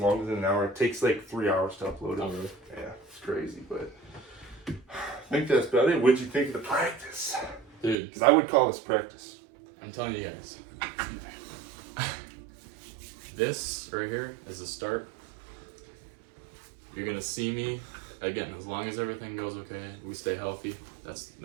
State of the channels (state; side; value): drops out; left; at 8.0 s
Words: than an hour. It takes like 3 hours to upload it. Oh, really? Yeah, it's crazy, but I think that's about it. What'd you think of the practice? Dude. Because I would call this practice. I'm telling you guys. This right here is the start. You're going to see me, again, as long as everything goes okay, we stay healthy,